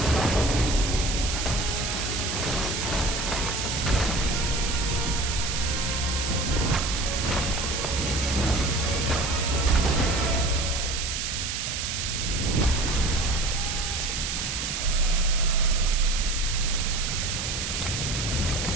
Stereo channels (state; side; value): noise; right; hiss, 3 dB below the sound